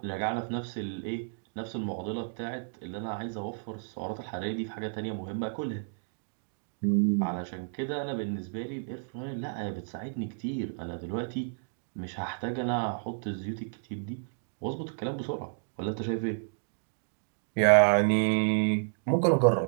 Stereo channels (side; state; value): left; silent; digital silence